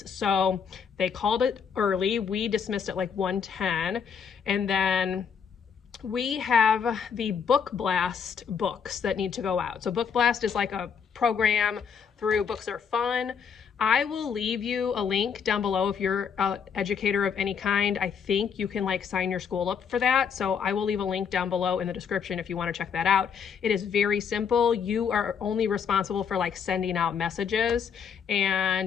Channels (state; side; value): quieter; right; 6.8 dB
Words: So they called it early. We dismissed at like 1:10, and then we have the Book Blast books that need to go out. So Book Blast is like a program through Books Are Fun. I will leave you a link down below if you're an educator of any kind. I think you can like sign your school up for that. So I will leave a link down below in the description if you want to check that out. It is very simple. You are only responsible for like sending out messages,